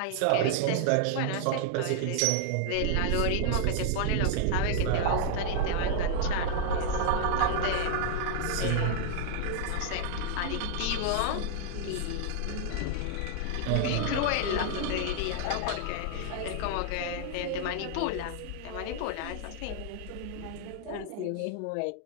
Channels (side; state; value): both; different; correlation -0.01